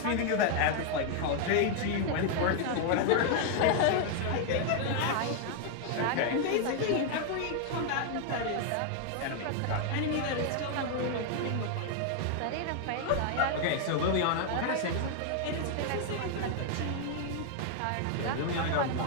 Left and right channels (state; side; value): different; both; correlation 0.00